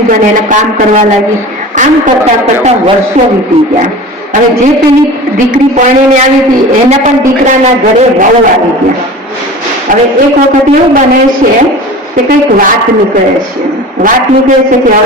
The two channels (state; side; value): normal; both; correlation 0.36